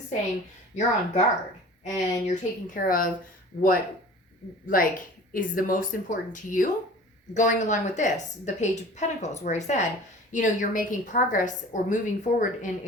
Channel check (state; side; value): normal; both; correlation 0.43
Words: saying you're on guard and you're taking care of what, is the most important to you. Going along with this, the Page of Pentacles, where I said, you're making progress or moving forward in